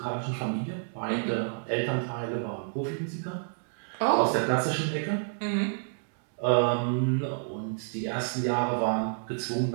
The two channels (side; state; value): left; silent; digital silence